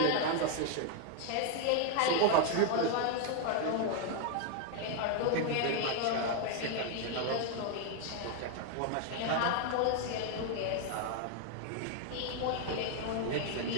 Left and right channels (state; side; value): different; both; correlation 0.01